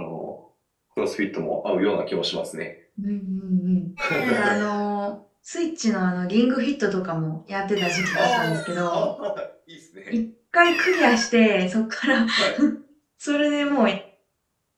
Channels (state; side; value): identical; both; correlation 1.00